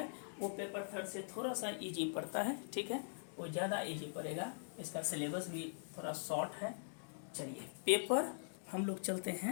वो पेपर 3 से थोड़ा सा इजी पड़ता है, ठीक है, वो ज़्यादा इजी पड़ेगा, इसका सिलेबस भी थोड़ा शॉर्ट है। चलिए पेपर हम लोग चलते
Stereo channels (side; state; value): right; silent; digital silence